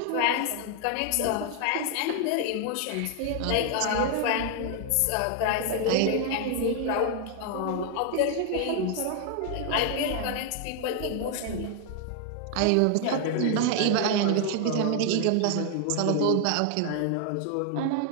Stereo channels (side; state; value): both; different; correlation 0.00